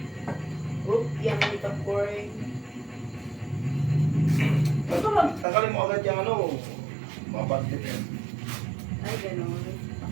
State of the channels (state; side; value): drops out; left; at 5.5 s